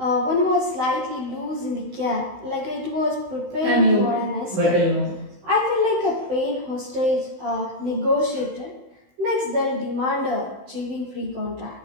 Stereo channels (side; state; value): left; late; 16 ms